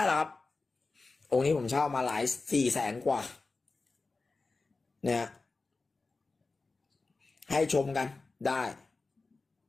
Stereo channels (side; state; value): right; quieter; 3.7 dB